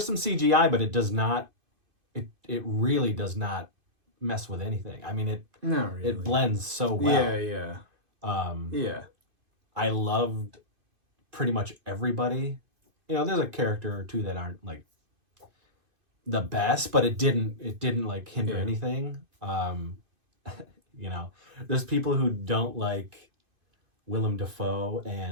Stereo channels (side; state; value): left; late; 2.5 ms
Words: some CGI, but it does not. It really does not mess with anything. I mean, not really. It blends so well. Yeah. I loved pretty much everybody. You know, there's a character or two that aren't like the best, but it didn't like hinder anything. You know, there's people who don't like Willem Dafoe